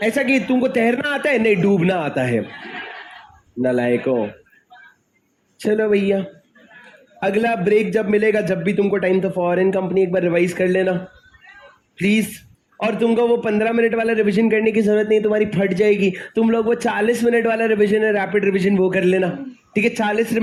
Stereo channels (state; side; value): identical; both; correlation 1.00